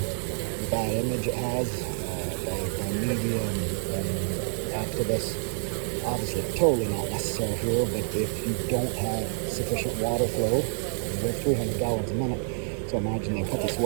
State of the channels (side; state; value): left; silent; 59 dB below the other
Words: bad image it has by media and activists. Obviously, totally not necessary here, but if you don't have sufficient water flow, we're 300 gallons a minute, so imagine they put this